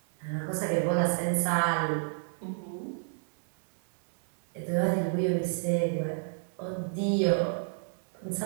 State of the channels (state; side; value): silent; left; digital silence